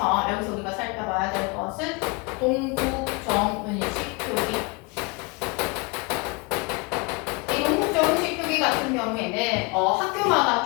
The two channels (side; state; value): right; quieter; 28.8 dB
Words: 여기서 우리가 살펴봐야 될 것은 동국정은식 표기. 이 동국정은식 표기 같은 경우에는 학교마다